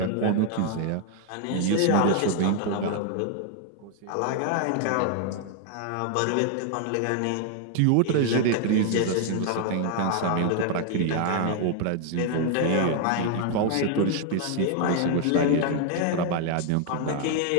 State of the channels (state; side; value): different; both; correlation 0.00